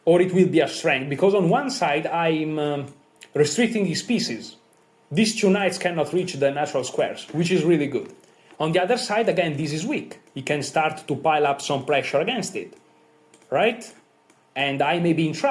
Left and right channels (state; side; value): identical; both; correlation 1.00